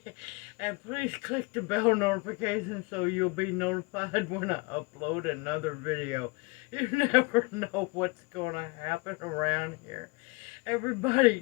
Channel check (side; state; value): right; quieter; 27.1 dB